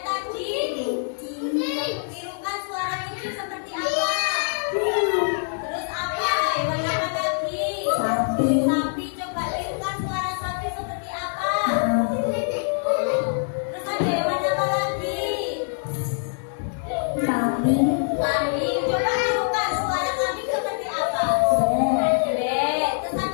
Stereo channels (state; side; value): silent; right; digital silence